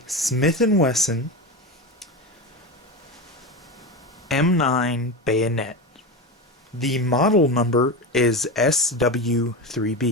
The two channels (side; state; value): both; normal; correlation 0.21